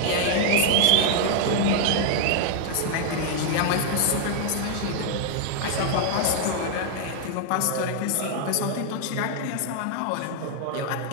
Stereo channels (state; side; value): different; both; correlation 0.00